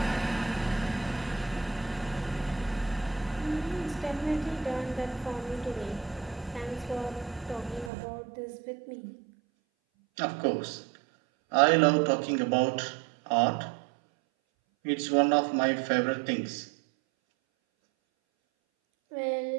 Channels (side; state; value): left; drops out; at 7.9 s